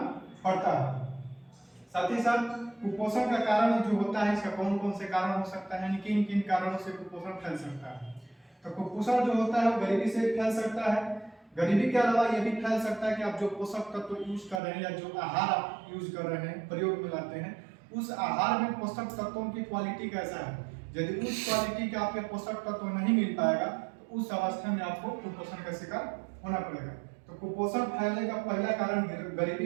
पड़ता है। साथ ही साथ कुपोषण का कारण जो होता है, इसका कौन कौन से कारण हो सकता है, यानी किन किन कारणों से कुपोषण फैल सकता है। तो कुपोषण जो होता है वो गरीबी से फैल सकता है। गरीबी के अलावा यह भी फैल सकता है कि आप जो पोषक तत्व यूज कर रहे हैं या जो आहार आप यूज कर रहे हैं, प्रयोग में लाते हैं, उस आहार में पोषक तत्वों की क्वालिटी कैसा है। यदि उस क्वालिटी के आपके पोषक तत्व नहीं मिल पाएगा तो उस अवस्था में आपको कुपोषण का शिकार होना पड़ेगा। तो कुपोषण फैलने का पहला कारण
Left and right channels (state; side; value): drops out; left; at 14.6 s